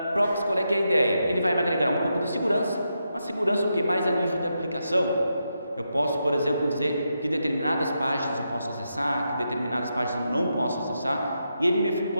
Proxy, qual é que é a ideia? Ele vai me agregar um pouco de segurança, uma segurança o que mais a nível de aplicação. Eu posso, por exemplo, dizer que determinadas páginas eu posso acessar, que determinadas páginas eu não posso acessar, e ele me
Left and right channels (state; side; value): inverted; both; correlation -0.84